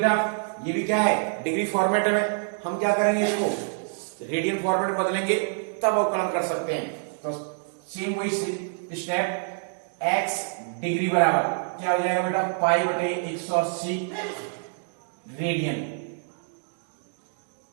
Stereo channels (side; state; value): left; silent; digital silence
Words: ये भी क्या है, डिग्री फॉर्मेट में। हम क्या करेंगे, इसको रेडियन फॉर्मेट में बदलेंगे तब अवकलन कर सकते हैं। तो सेम वही स्टेप, x डिग्री बराबर क्या हो जाएगा बेटा, पाई बटे 180 रेडियन।